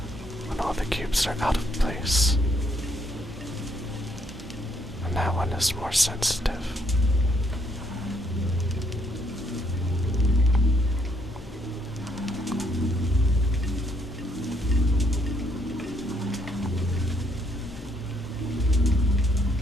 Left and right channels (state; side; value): normal; both; correlation 0.71